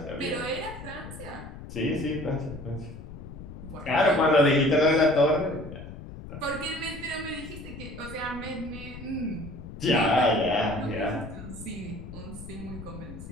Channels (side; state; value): left; noise; rumble, 12 dB below the sound